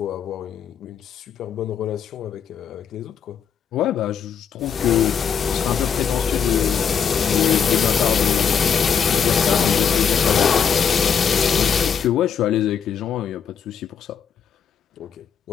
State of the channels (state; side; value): quieter; right; 7.2 dB